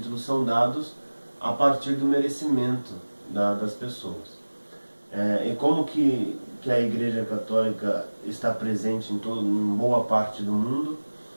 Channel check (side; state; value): both; inverted; correlation -1.00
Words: são dados a partir do merecimento das pessoas. E como que a Igreja Católica está presente em boa parte do mundo,